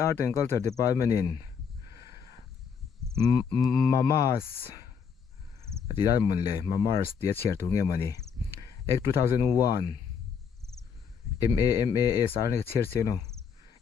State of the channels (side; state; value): right; quieter; 6.6 dB